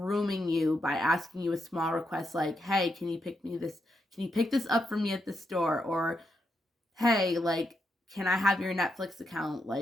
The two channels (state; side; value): normal; both; correlation 0.82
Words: you by asking you a small request like, "Hey, can you pick this up for me at the store?" or "Hey, like, can I have your Netflix account,